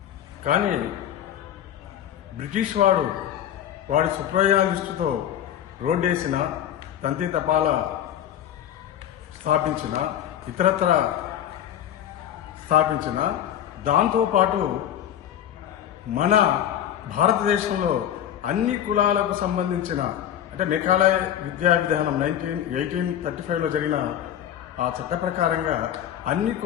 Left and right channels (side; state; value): right; quieter; 10.6 dB